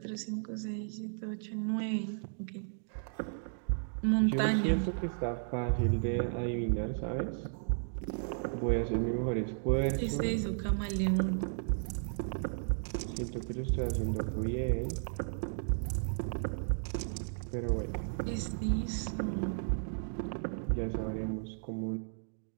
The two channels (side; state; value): left; silent; digital silence